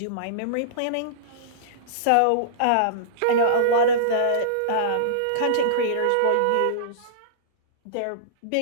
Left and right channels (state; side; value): different; both; correlation -0.03